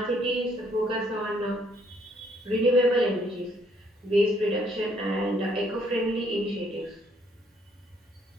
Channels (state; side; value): normal; both; correlation 0.67